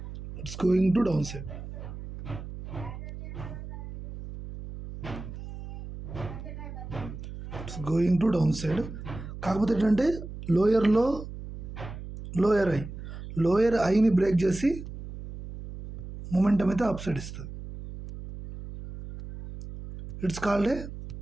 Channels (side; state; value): right; noise; hum, 11 dB below the sound